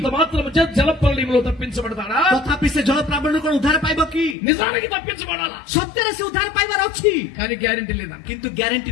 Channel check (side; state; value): right; drops out; at 4.4 s